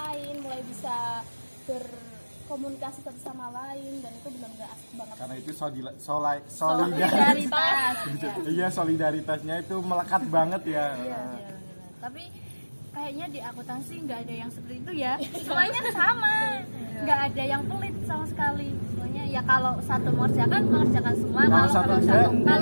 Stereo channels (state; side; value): inverted; both; correlation -1.00